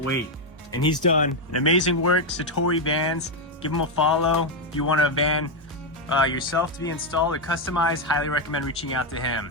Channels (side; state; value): both; normal; correlation 0.03